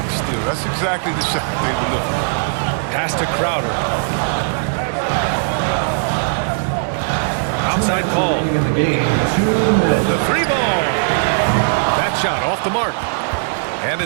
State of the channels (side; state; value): left; silent; digital silence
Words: still, that's exactly the shot they were looking for. Pass to Crowder. Outside Paul. In the game, 2 minutes. The 3 ball. That shot off the mark. And